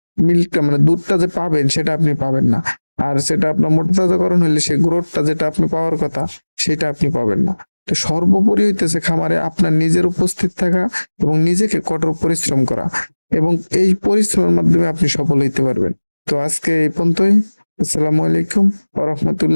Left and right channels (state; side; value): inverted; both; correlation -1.00